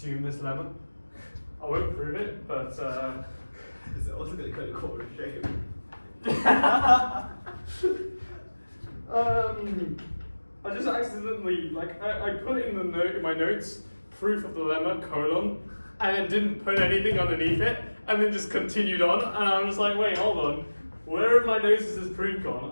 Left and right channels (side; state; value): both; inverted; correlation -1.00